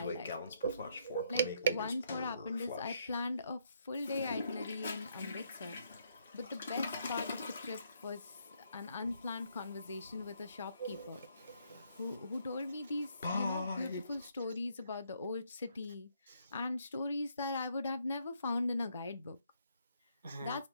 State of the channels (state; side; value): inverted; both; correlation -0.72